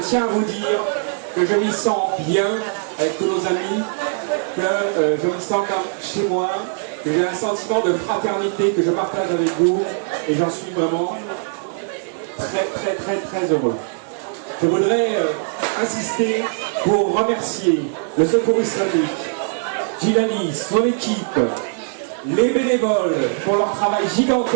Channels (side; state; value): left; silent; 58 dB below the other